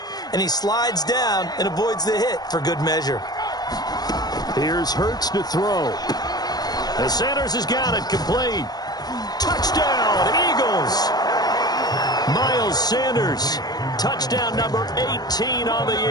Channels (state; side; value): late; right; 0.19 ms